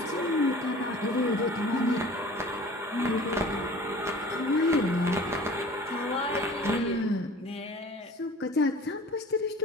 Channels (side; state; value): both; normal; correlation 0.44